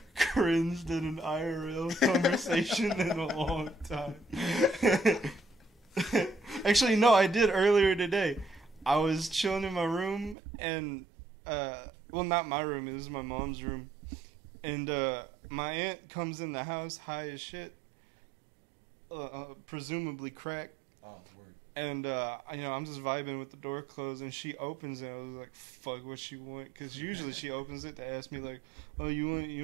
cringed in an IRL conversation in a long time. Actually, no, I did earlier today. I was chilling in my room and, well, not my room, it was my mom's room. And my aunt comes in the house high as shit, presumably crack. Oh, word. And, I'm just vibing with the door closed, and she opens it. I was like, fuck, what she want? Because usually she opens it to ask me, like, oh, you want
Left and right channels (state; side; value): drops out; left; at 10.4 s